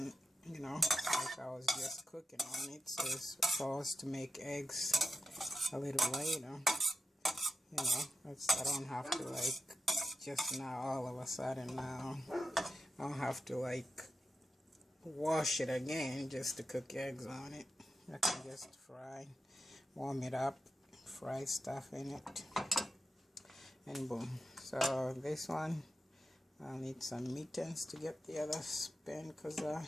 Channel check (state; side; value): normal; both; correlation 0.89